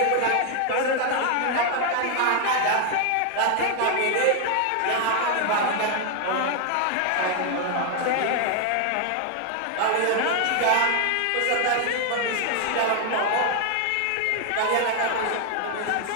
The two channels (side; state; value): both; different; correlation 0.00